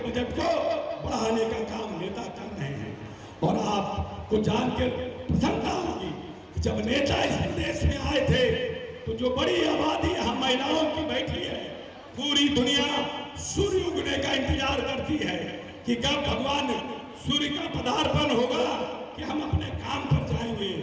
को बढ़ाने का काम नेता कर रहे हैं। और आपको जानकर प्रसन्नता होगी कि जब नेता इस प्रदेश में आए थे तो जो बड़ी आबादी यहाँ महिलाओं की बैठी है, पूरी दुनिया सूर्य उगने का इंतजार करती है कि कब भगवान सूर्य का पदार्पण होगा कि हम अपने काम पर जाएंगे।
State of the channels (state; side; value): identical; both; correlation 1.00